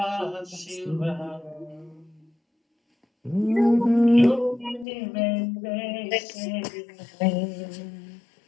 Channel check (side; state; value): right; drops out; at 4.9 s